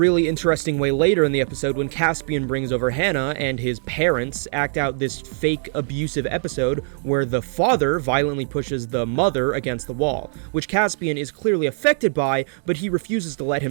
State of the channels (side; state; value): left; silent; 64 dB below the other